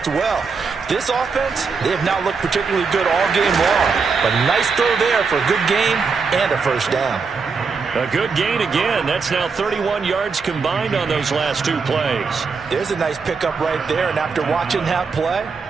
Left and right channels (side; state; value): left; quieter; 5.1 dB